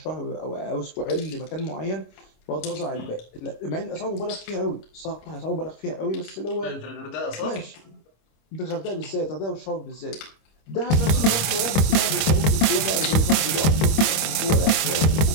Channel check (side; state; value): right; late; 25 ms